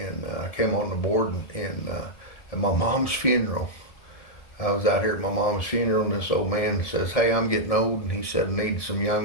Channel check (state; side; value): late; right; 1.7 ms